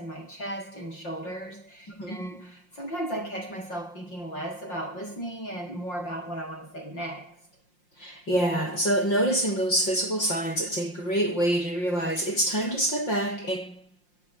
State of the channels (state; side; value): late; right; 5.6 ms